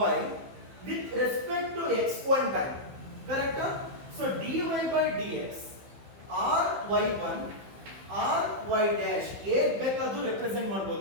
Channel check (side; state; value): left; late; 15 ms